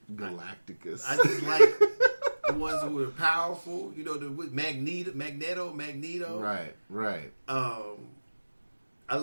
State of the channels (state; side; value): inverted; both; correlation -1.00